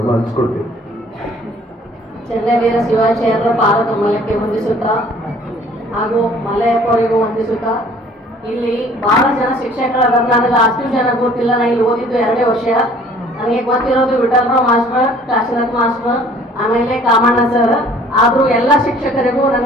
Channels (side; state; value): both; normal; correlation 0.54